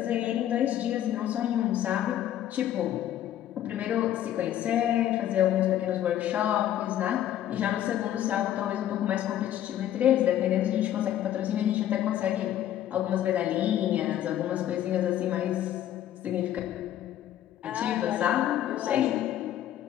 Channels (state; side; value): quieter; right; 11.7 dB